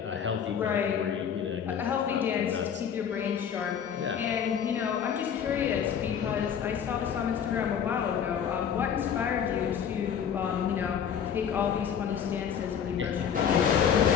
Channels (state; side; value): quieter; right; 8.0 dB